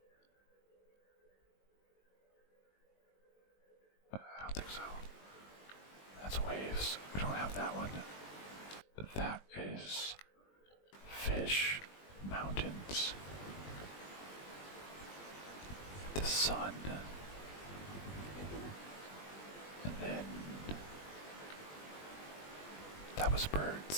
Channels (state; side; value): late; right; 20 ms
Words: I don't think so. That's waves. We don't have that one. That is fish, mountains, the sun, and then that was